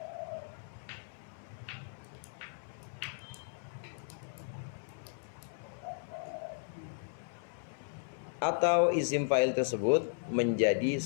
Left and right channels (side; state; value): right; silent; 54 dB below the other